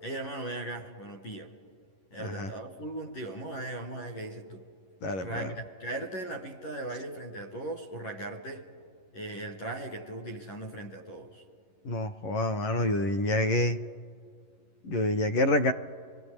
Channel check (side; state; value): right; late; 11 ms